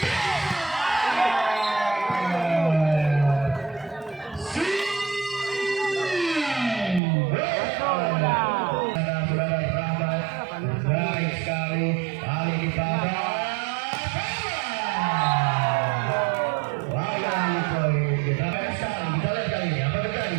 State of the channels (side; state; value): left; drops out; at 7.0 s